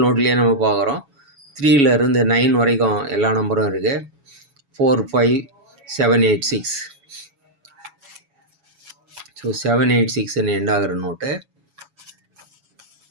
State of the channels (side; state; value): left; late; 7.1 ms